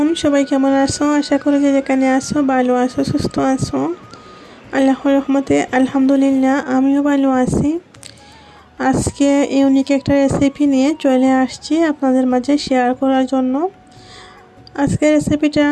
সবাই কেমন আছো? আশা করি যে যেখানে আছো ভালো আছো, সুস্থ আছো। আল্লাহর রহমতে আলহামদুলিল্লাহ আমিও ভালো আছি। আজকে ইউনিক একটা রেসিপি নিয়ে চলে আসছি আপনাদের মাঝে শেয়ার করার জন্য। আজকের রেসিপিটা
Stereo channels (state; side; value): identical; both; correlation 1.00